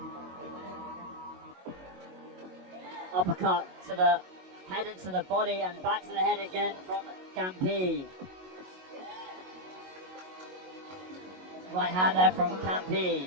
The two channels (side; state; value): left; late; 22 ms